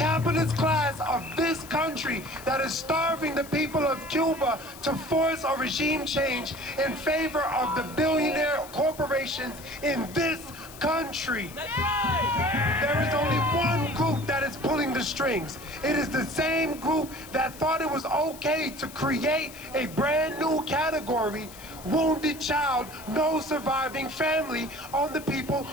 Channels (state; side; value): noise; left; hiss, 17 dB below the sound